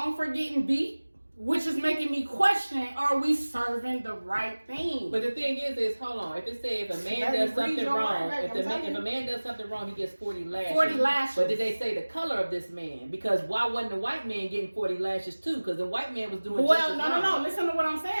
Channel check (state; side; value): inverted; both; correlation -1.00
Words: for getting beat? Which is making me question, are we serving the right thing? But the thing is, hold on. If it says if a man Let me does read something your wrong, mind, if I'm a telling man does something wrong, he gets 40 lashes. 40 lashes. But did they say the color of this man? Because why wasn't the white man getting 40 lashes too? Because the white man was doing just as wrong. No. Listen to what I'm